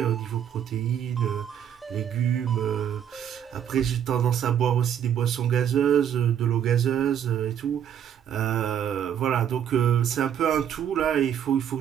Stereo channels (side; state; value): left; quieter; 9.2 dB